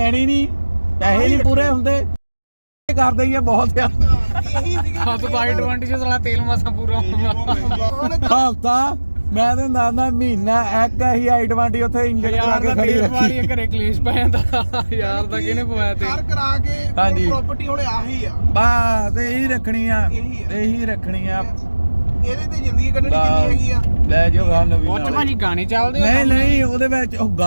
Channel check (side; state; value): both; inverted; correlation -1.00